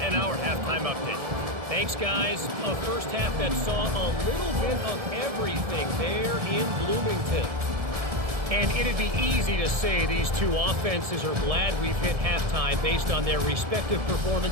our halftime update. Thanks, guys. A first half that saw a little bit of everything there in Bloomington. And it'd be easy to say these two offenses are glad we've hit halftime based on their respective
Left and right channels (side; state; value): left; late; 1.5 ms